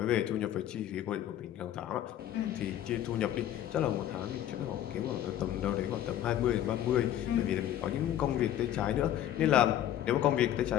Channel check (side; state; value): right; quieter; 11.7 dB